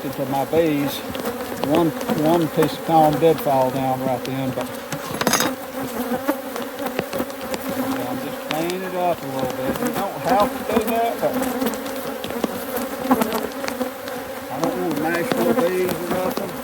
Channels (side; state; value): both; identical; correlation 1.00